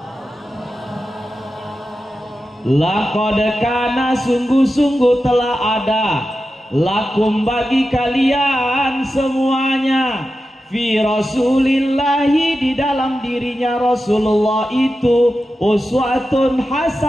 Laqad kana, sungguh-sungguh telah ada, lakum bagi kalian semuanya, fi rasulillahi di dalam dirinya Rasulullah itu, uswatun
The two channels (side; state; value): both; normal; correlation 0.92